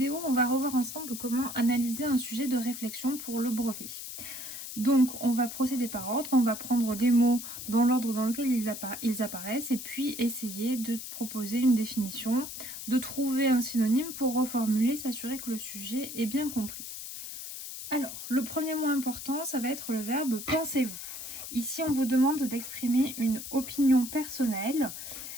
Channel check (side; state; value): left; noise; hiss, 9 dB below the sound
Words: on va revoir ensemble comment analyser un sujet de réflexion pour le brevet. Donc, on va procéder par ordre, on va prendre des mots dans l'ordre dans lequel ils apparaissent et puis essayer de proposer une définition, de trouver un synonyme pour reformuler, s'assurer que le sujet est bien compris. Alors, le premier mot important, ça va être le verbe « pensez-vous ». Ici, on vous demande d'exprimer une opinion personnelle.